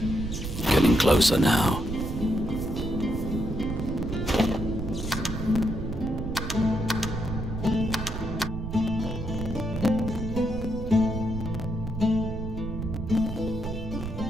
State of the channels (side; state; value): right; noise; rumble, 6 dB below the sound